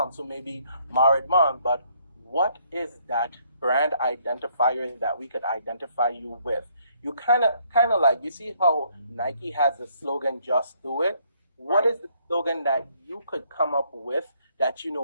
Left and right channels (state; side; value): inverted; both; correlation -0.67